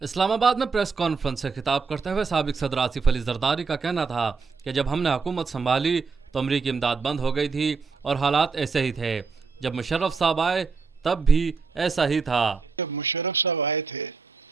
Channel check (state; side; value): quieter; left; 4.8 dB